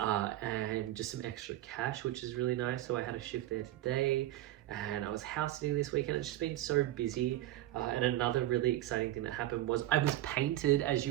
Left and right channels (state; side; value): quieter; left; 14.5 dB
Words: just some extra cash, which is really nice. So I had a shift there today, and I was house sitting this weekend. It's just been so busy. And another really exciting thing that happened was I was painted, as